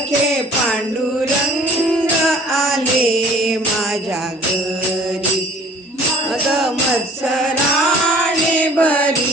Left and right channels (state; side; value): normal; both; correlation 0.50